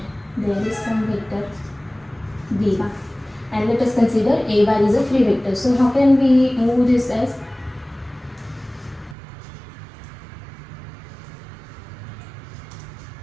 there is some vector b bar, and let us consider a bar is a free vector. So how can we move this as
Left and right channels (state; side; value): drops out; left; at 9.2 s